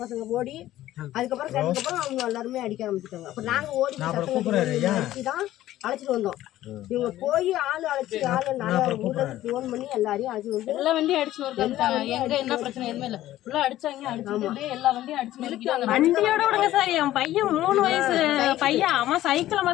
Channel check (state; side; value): quieter; right; 14.3 dB